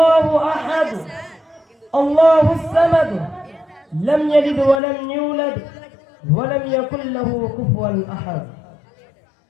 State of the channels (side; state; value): right; drops out; at 4.8 s